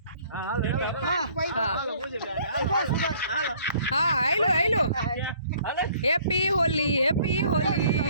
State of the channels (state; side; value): inverted; both; correlation -0.58